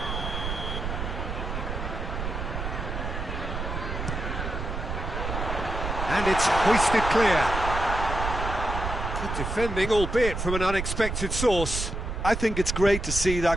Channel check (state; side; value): noise; right; rumble, 4 dB below the sound